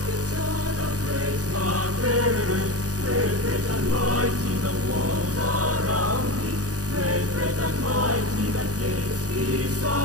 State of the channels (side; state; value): left; late; 0.67 ms